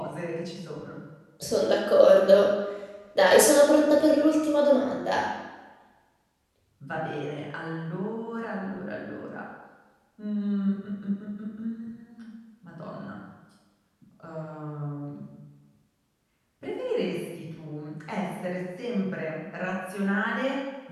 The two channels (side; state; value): both; identical; correlation 1.00